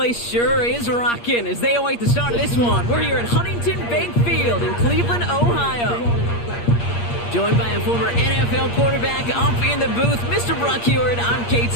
sure is rocking as they await the start of this one. We're here at Huntington Bank Field in Cleveland, Ohio. Joined by a former NFL quarterback up in the booth, Mr. Brock Heward. I'm Kate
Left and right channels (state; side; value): late; right; 8.5 ms